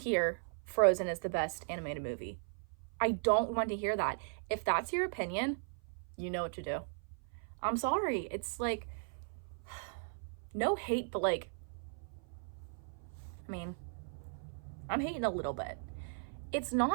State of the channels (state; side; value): silent; left; 53 dB below the other